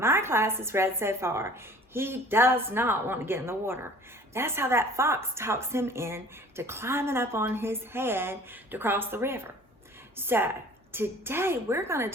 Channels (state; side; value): normal; both; correlation 0.49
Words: class has read so far, he does not want to get in the water. That's how that fox talks him in to climbing up on his head to cross the river. So, today we're going